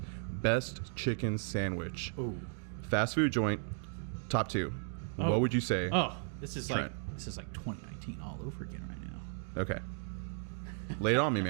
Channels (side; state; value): left; silent; 54 dB below the other